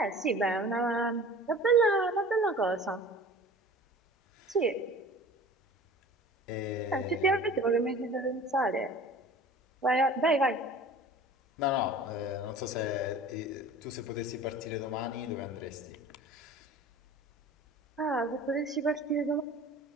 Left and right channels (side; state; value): both; normal; correlation 0.42